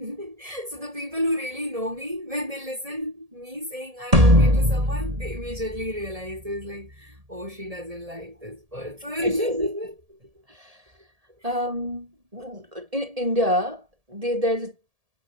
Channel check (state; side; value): late; left; 1.7 ms